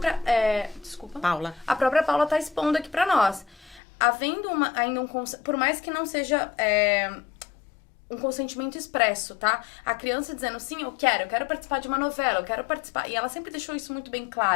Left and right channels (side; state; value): right; drops out; at 3.8 s